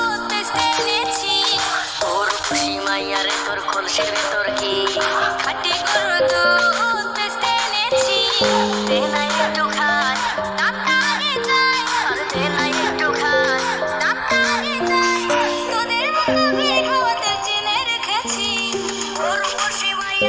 এনেছি, তোর খুশি মাইয়ারে তোর কলসির ভেতর কি খাটি গরুর দুধ এনেছি। দে না একটু খাই তাড়াতাড়ি যাই, আর দে না একটু খাই তাড়াতাড়ি যাই। তোদের মুখে খাওয়াতে চিনে রেখেছি, তোর খুশি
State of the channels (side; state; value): both; identical; correlation 1.00